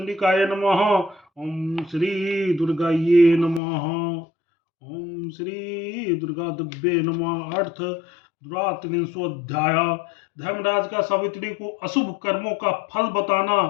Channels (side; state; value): right; drops out; at 3.6 s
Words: नमः। ओम श्री दुर्गाये नमः। ओम श्री दुर्गा दिव्ये नमः। अर्थ द्वात्रिंशोऽध्याय। धर्मराज का सावित्री को अशुभ कर्मों का फल बताना।